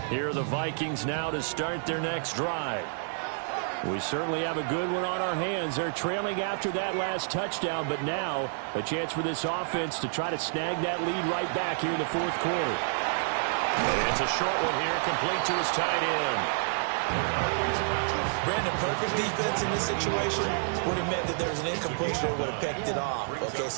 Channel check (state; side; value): silent; left; digital silence